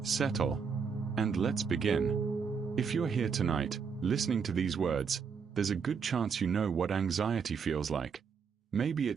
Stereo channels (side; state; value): left; quieter; 6.1 dB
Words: settle, and let's begin. If you're here tonight, listening to these words, there's a good chance you know what anxiety feels like. Maybe